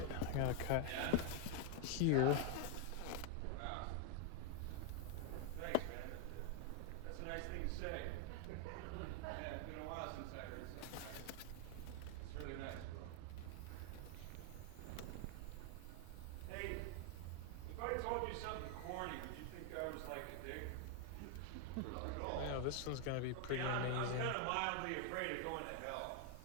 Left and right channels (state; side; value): different; both; correlation 0.00